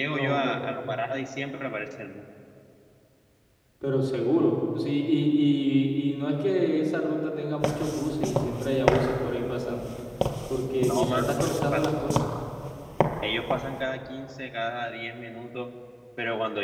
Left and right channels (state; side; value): identical; both; correlation 1.00